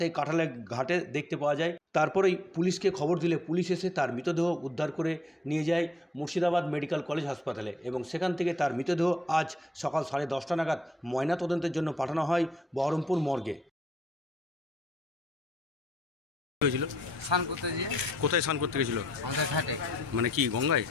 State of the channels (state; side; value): normal; both; correlation 0.71